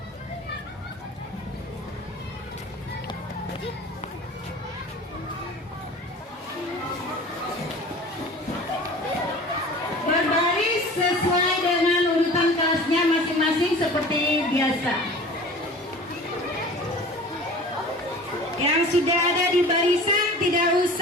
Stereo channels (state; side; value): normal; both; correlation 0.41